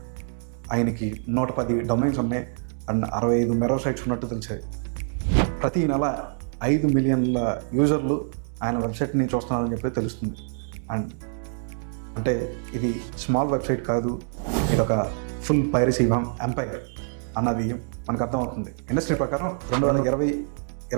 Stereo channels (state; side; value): silent; left; 61 dB below the other